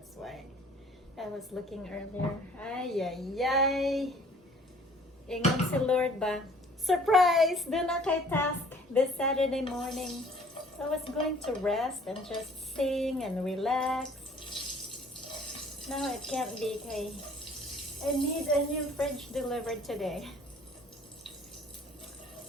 why I was looking earlier. Ay. Ingon si Lord ba? Surprise! Do na kay task this Saturday morning. So I was going to rest and just sing and relax. Now it can't be kay I need a new fridge delivered today.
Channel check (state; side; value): normal; both; correlation 0.54